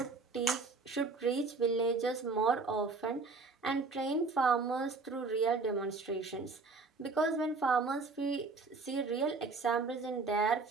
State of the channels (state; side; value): quieter; left; 4.0 dB